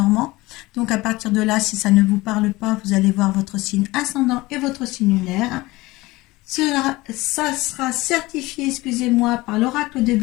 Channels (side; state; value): right; quieter; 20.4 dB